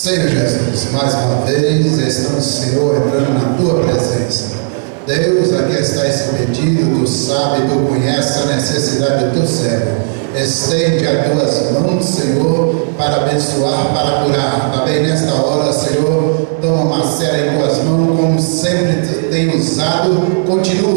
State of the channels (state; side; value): silent; left; digital silence